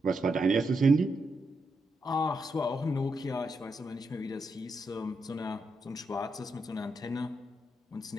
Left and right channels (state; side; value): normal; both; correlation 0.83